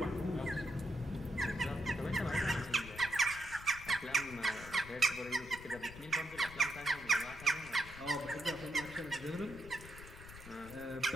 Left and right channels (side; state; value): left; noise; rumble, 15 dB below the sound